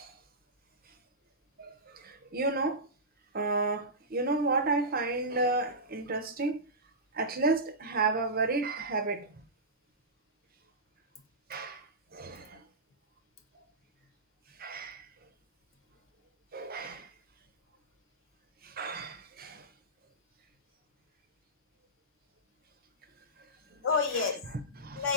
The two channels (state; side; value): normal; both; correlation -0.17